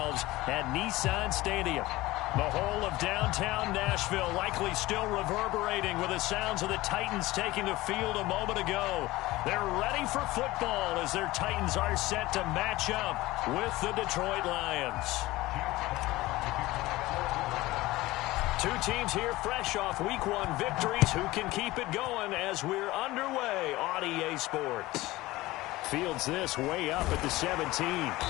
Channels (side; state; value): right; quieter; 18.7 dB